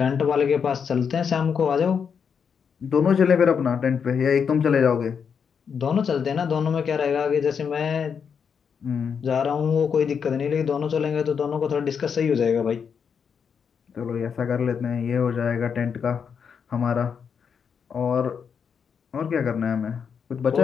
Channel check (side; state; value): right; quieter; 6.7 dB